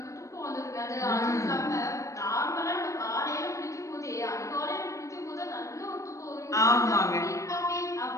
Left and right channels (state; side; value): late; right; 0.15 ms